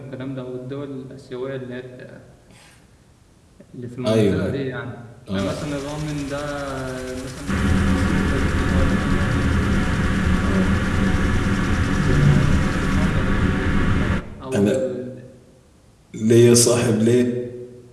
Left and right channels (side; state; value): both; identical; correlation 1.00